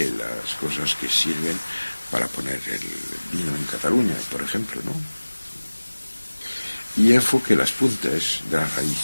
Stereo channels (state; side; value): inverted; both; correlation -1.00